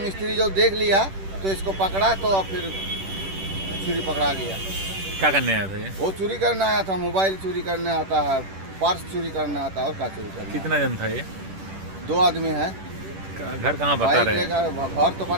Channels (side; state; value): left; late; 10 ms